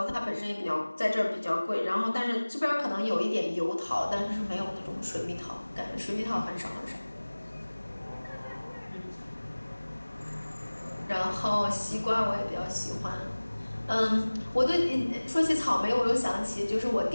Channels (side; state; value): both; inverted; correlation -1.00